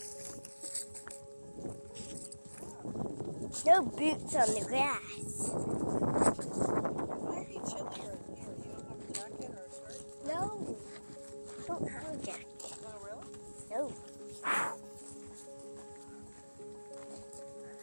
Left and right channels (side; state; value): both; inverted; correlation -1.00